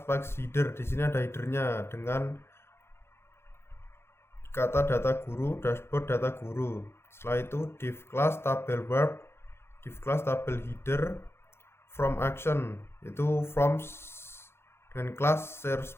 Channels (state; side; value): late; right; 0.12 ms